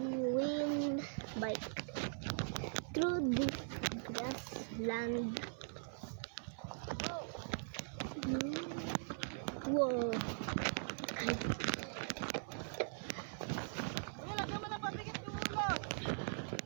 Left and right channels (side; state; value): left; silent; 50 dB below the other